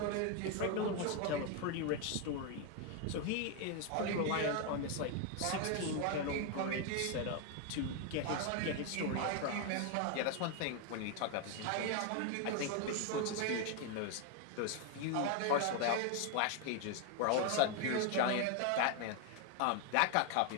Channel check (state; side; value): different; both; correlation 0.01